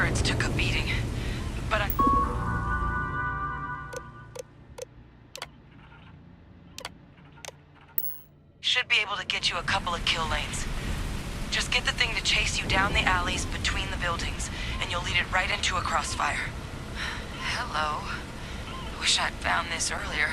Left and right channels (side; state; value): both; identical; correlation 1.00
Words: took a beating, but I... should be able to get you a couple of kill lanes. Just get the thing to chase you down the alleys between the buildings, and you'll lead it right into a crossfire. Hello. Wish I'd found this earlier.